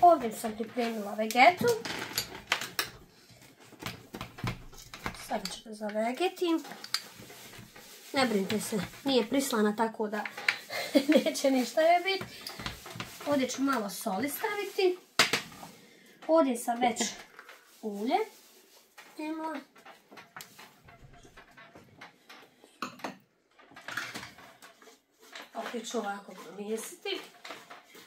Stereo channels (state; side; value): identical; both; correlation 1.00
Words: Ovdje sam pripremila vegetu. Sada ću da zavegetim. Ne brinite se, nije prislana tako da neće ništa je biti. Ovdje ću malo soli staviti. Ovdje sam već ulje imala. Opet ću ovako promjesiti.